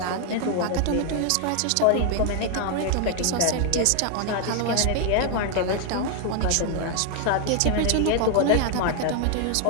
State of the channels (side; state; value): both; different; correlation 0.00